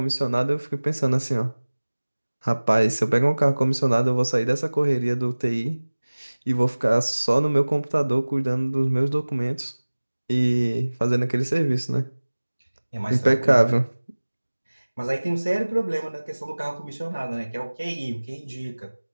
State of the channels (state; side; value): inverted; both; correlation -1.00